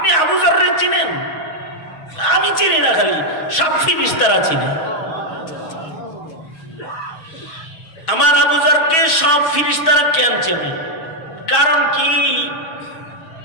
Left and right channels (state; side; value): late; right; 6.2 ms